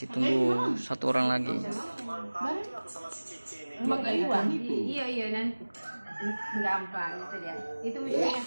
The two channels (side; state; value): both; inverted; correlation -1.00